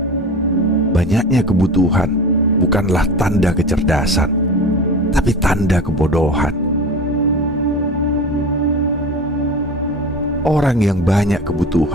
banyaknya kebutuhan bukanlah tanda kecerdasan, tapi tanda kebodohan. Orang yang banyak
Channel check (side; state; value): both; normal; correlation 0.32